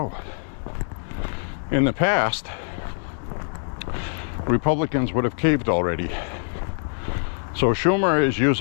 In the past, Republicans would have caved already. So Schumer is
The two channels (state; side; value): silent; right; 59 dB below the other